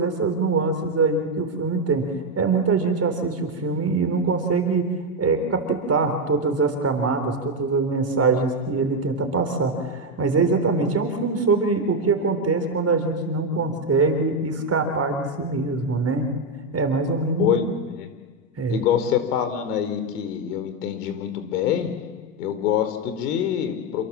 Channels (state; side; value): normal; both; correlation 0.06